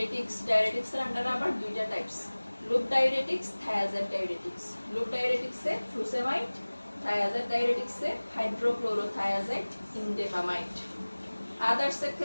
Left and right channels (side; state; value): both; inverted; correlation -1.00